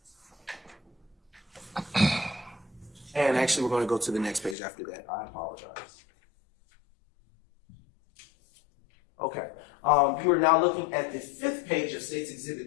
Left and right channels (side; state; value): right; drops out; at 4.5 s